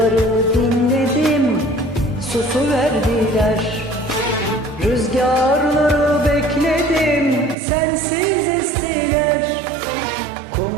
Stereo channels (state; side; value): drops out; left; at 7.6 s